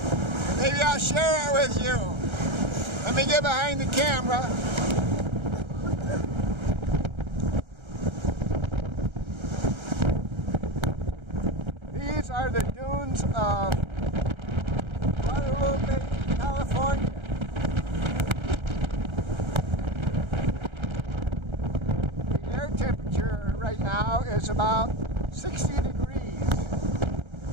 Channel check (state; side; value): late; left; 1.3 ms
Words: Maybe I'll share it with you. Let me get behind the camera. These are the dunes of Guadalupe, California. The air temperature right now is about 60 degrees.